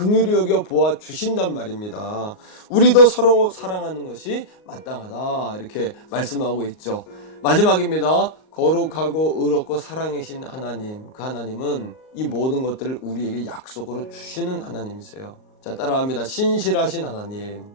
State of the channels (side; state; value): right; late; 38 ms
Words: 여겨 보아 주신단 말입니다. 우리도 서로 사랑하는 것이 마땅하다. 이렇게 말씀하고 있죠. 마지막입니다. 거룩하고 의롭고 사랑이신 하나님. 그 하나님은 이 모든 것들을 우리에게 약속으로 주시는 하나님이세요. 자, 따라합니다. 신실하신 하나님.